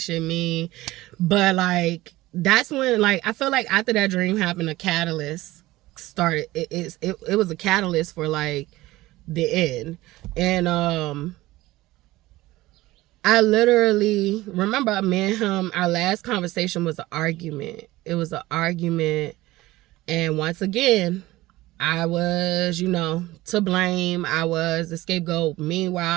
shit mean. But, like, that's when, like, I feel like after that dream happened, a catalyst started. It was a catalyst for, like, the end. And I literally remember me and him, our last conversation was an argument. It was an argument. And once again, I was, to blame. I was the scapegoat.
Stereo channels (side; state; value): left; quieter; 18.1 dB